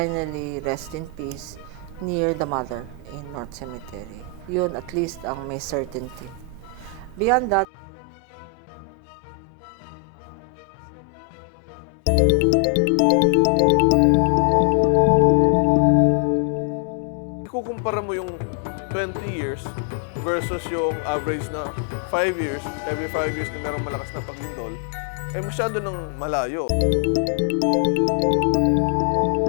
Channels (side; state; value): right; drops out; at 7.7 s